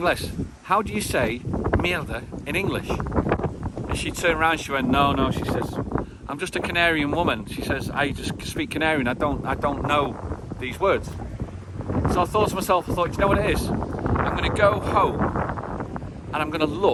How do you say mierda in English? And she turned around, she went, no, she says, I'm just a Canarian woman. She says, I just speak Canarian. I don't know these words. So I thought to myself, you know what it is? I'm going to go home and I'm going to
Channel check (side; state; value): both; identical; correlation 1.00